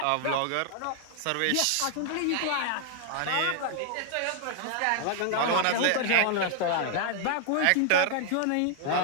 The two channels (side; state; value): both; different; correlation 0.00